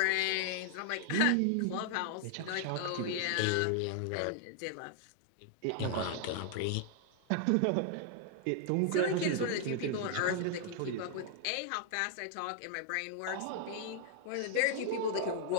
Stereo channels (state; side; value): different; both; correlation 0.00